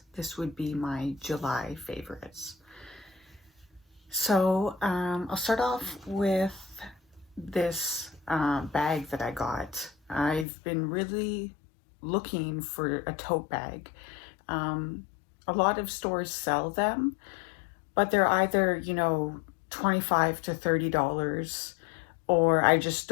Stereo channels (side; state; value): right; drops out; at 10.5 s